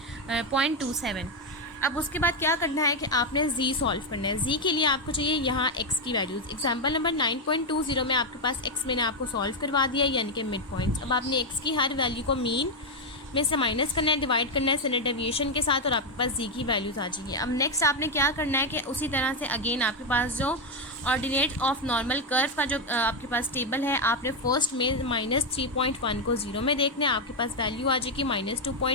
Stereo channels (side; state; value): both; normal; correlation 0.04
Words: अब उसके बाद क्या करना है कि आपने z सॉल्व करना है। z के लिए आपको चाहिए यहाँ x की वैल्यूज़। एग्जाम्पल नंबर 9.20 में आपके पास x मैंने आपको सॉल्व करवा दिया, यानी कि मिड पॉइंट्स। अब आपने x की हर वैल्यू को मीन में से माइनस करना है, डिवाइड करना है स्टैंडर्ड डेविएशन के साथ, और आपके पास z की वैल्यूज़ आ जाएगी। अब नेक्स्ट आपने क्या करना है कि उसी तरह से अगेन आपके पास जो ऑर्डिनेट ऑफ नॉर्मल कर्व का जो आपके पास टेबल है, आपने फर्स्ट में -3.1 को 0 में देखना है, आपके पास वैल्यू आ जाएगी।